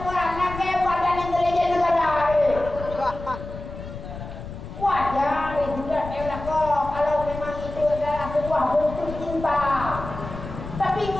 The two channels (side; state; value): left; noise; rumble, 11 dB below the sound